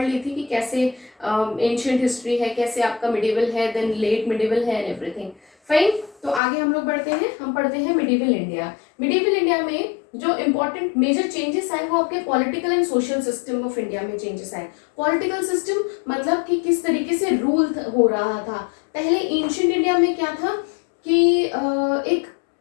ली थी कि कैसे एंशियंट हिस्ट्री है, कैसे आपका मिडिवल है, देन लेट मिडिवल है एंड एवरीथिंग। फाइन, तो आगे हम लोग बढ़ते हैं। हम पढ़ते हैं मिडिवल इंडिया। मिडिवल इंडिया में जो इंपॉर्टेंट मेजर चेंजेस आए वो आपके political and social system of India में चेंजेस आए। पॉलिटिकल सिस्टम मतलब कि किस तरीके से रूल हो रहा था। पहले एंशियंट इंडिया में क्या था कि एक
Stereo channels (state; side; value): drops out; right; at 6.4 s